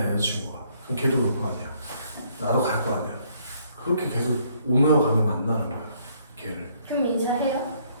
여자친구가. 그럼 걔도 올 거 아니야. 나도 갈 거 아니야. 그렇게 계속 오며 가며 만나는 거야. 걔를. 그럼 인사해요?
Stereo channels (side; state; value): both; inverted; correlation -0.67